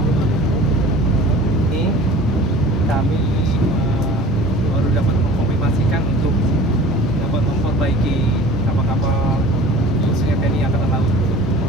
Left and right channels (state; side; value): normal; both; correlation 0.43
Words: Ini kami baru dapat mengkonfirmasikan untuk dapat memperbaiki kapal-kapal khususnya TNI Angkatan Laut